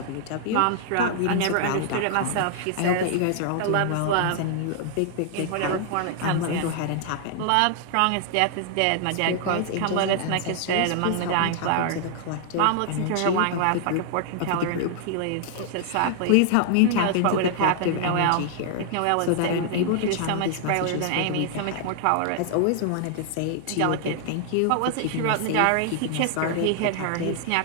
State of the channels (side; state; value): both; different; correlation 0.00